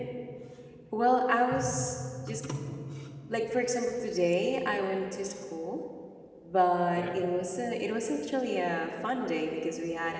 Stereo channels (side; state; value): both; identical; correlation 1.00